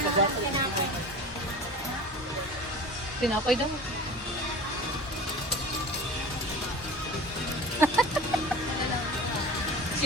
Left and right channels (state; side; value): normal; both; correlation 0.37